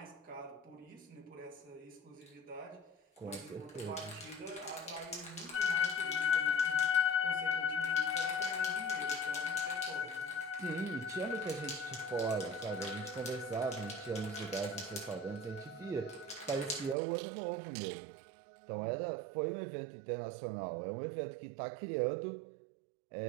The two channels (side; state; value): left; drops out; at 16.9 s